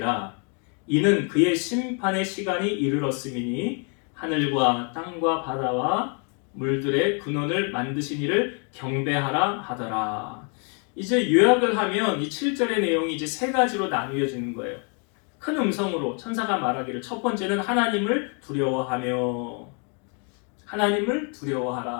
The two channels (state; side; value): quieter; right; 38.5 dB